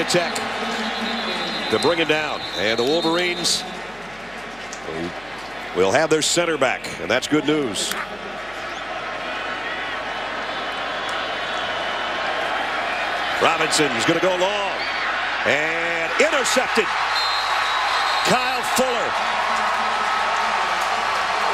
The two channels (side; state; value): left; noise; hum, 25 dB below the sound